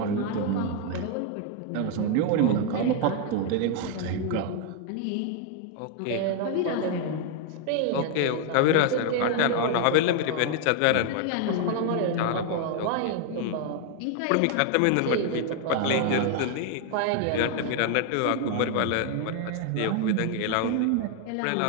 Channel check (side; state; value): both; different; correlation 0.00